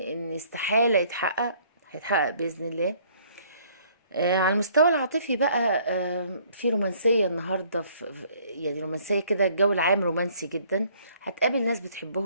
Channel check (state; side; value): inverted; both; correlation -0.60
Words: استحالة يتحقق، هيتحقق بإذن الله. على المستوى العاطفي بقى، في رومانسية النهاردة، يعني رومانسية كده، الجو العام رومانسي جدا. هتقابل ناس